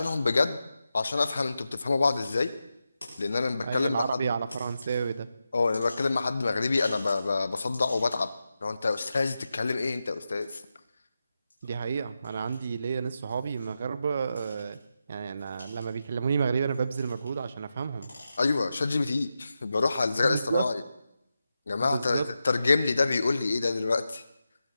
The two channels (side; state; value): both; inverted; correlation -0.89